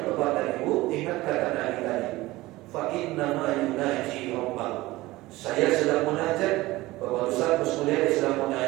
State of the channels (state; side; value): quieter; left; 18.9 dB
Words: Bapak dan Ibu, ingat kata Nabi tadi, fa inna ma yunaji rabbahu. Saya sedang munajat, Bapak Ustaz, Bu Mulyadi sedang